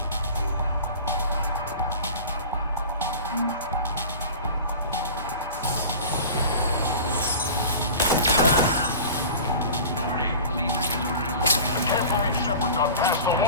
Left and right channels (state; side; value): inverted; both; correlation -0.37